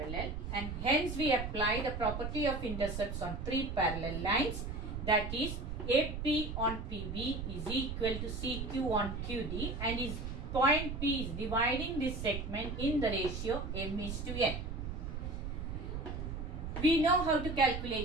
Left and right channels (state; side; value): noise; right; rumble, 5 dB below the sound